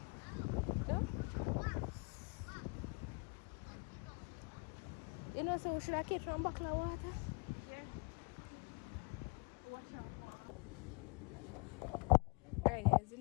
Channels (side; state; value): right; quieter; 29.8 dB